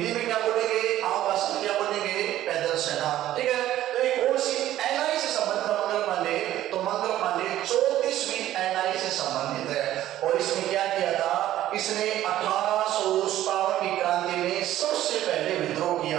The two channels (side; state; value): left; quieter; 13.4 dB